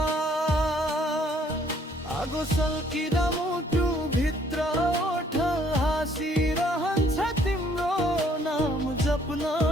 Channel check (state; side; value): normal; both; correlation 0.63